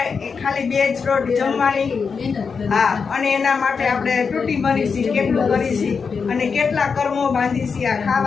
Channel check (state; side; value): quieter; right; 5.5 dB